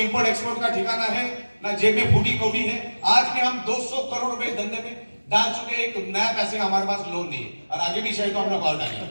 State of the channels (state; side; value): inverted; both; correlation -1.00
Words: एक्सपोर्ट का ठिकाना है, ना जेब में फूटी कौड़ी है। आज भी हम 200 करोड़ रुपए धंधे में डाल चुके, एक नया पैसे हमारे पास लोन नहीं है, और आगे भी शायद तो हम लोग और डालेंगे।